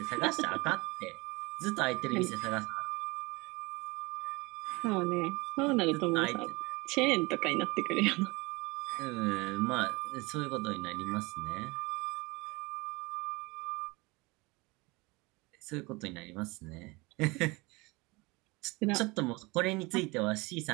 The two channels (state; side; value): quieter; left; 24.6 dB